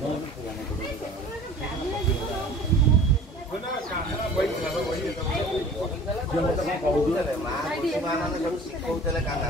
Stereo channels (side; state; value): both; normal; correlation 0.45